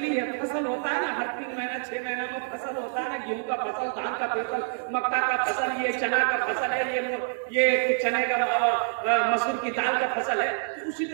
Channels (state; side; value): silent; left; digital silence